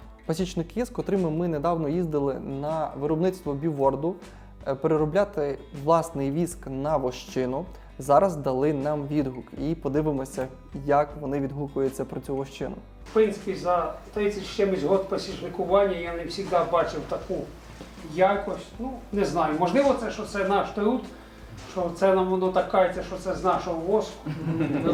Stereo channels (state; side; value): identical; both; correlation 1.00